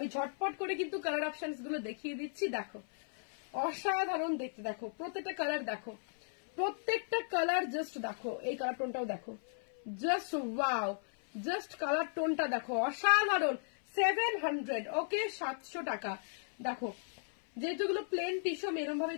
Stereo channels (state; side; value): silent; right; 54 dB below the other